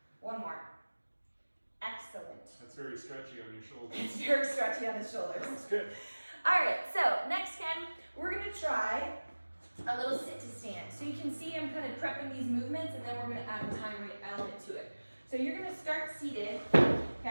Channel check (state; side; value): inverted; both; correlation -1.00